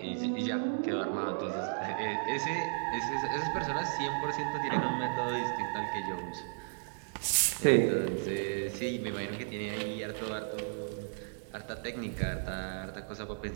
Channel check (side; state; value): left; silent; digital silence